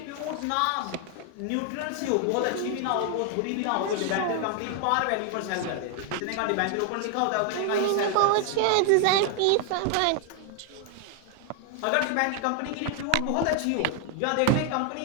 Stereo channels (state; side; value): different; both; correlation 0.00